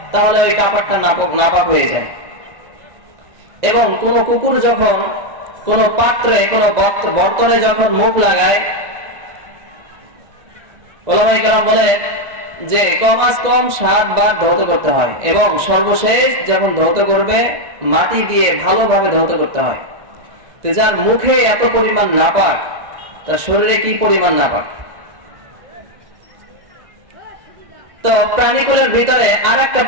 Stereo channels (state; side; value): late; left; 1.6 ms